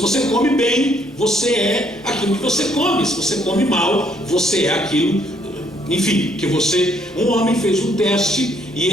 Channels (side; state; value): both; normal; correlation 0.68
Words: come bem, você é aquilo que você come. Se você come mal, você é aquilo, enfim, que você... Um homem fez um teste e